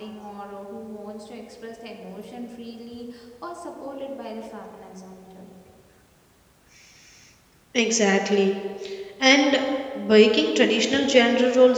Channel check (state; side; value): identical; both; correlation 1.00